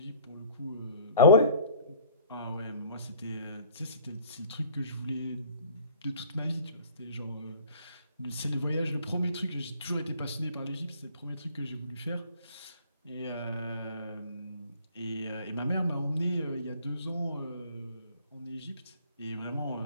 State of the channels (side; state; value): both; inverted; correlation -0.50